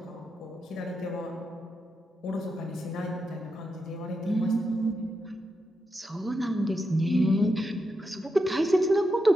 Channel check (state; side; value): normal; both; correlation 0.85